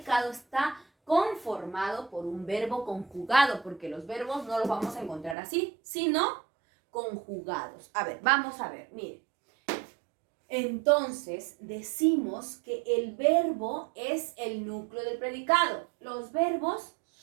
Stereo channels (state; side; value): drops out; left; at 5.4 s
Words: está conformado por un verbo conjugado, porque los verbos no los vamos a encontrar así, sino conjugados. A ver, vamos a ver, miren. Entonces, decimos que el verbo es el núcleo del predicado. Los verbos